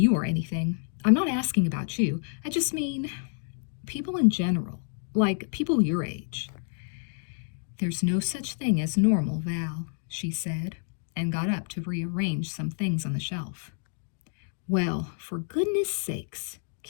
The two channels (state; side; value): silent; right; digital silence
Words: or anything. I'm not asking about you. I just mean people in general, like people your age. There's no such thing as normal, Val, she said, and got up to rearrange some things on the shelf. Well, for goodness sakes,